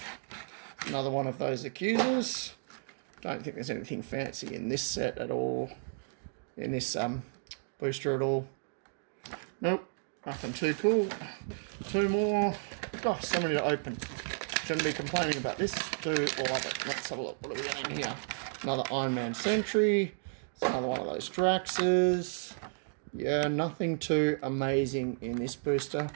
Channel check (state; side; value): silent; left; digital silence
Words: Another one of those Accusers. Don't think there's anything fancy in this set at all. In this booster at all. Nope. Nothing too cool. 2 more. Gosh, so many to open. Shouldn't be complaining about this. Do love it. Let's have a look. What do we got in here? Another Iron Man Sentry. It's another one of those Draxes. Yeah, nothing too amazing in this booster.